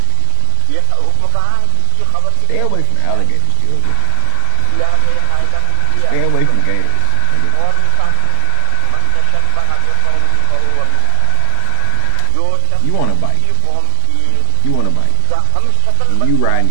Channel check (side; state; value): both; different; correlation 0.00